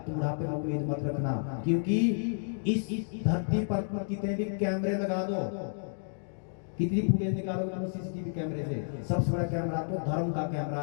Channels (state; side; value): silent; right; digital silence